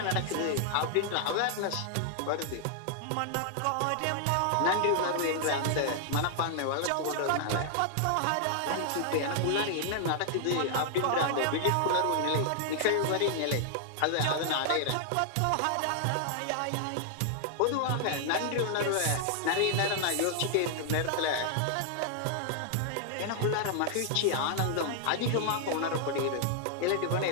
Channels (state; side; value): different; both; correlation -0.01